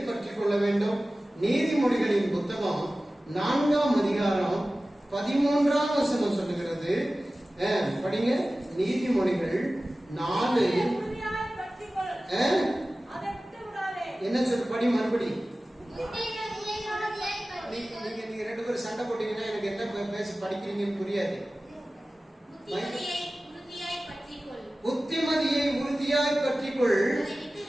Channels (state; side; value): normal; both; correlation 0.96